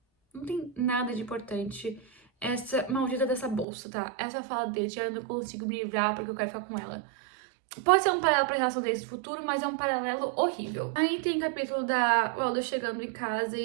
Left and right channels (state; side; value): drops out; left; at 3.7 s